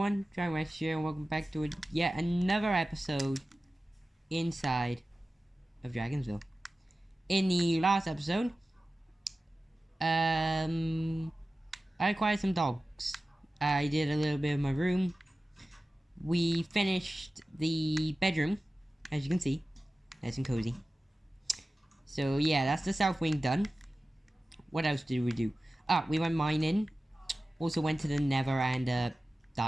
everyone, Dragon here, and welcome back to yet another episode inside of Dragonsville. In the last episode, I acquired some dogs. I did a little bit of my room. We finished the bedroom, as you can see, nice and cozy. So yeah, that's the south wing done. What else did we do? Ah, we went mining. Also went to the Nether and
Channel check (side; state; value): both; normal; correlation 0.96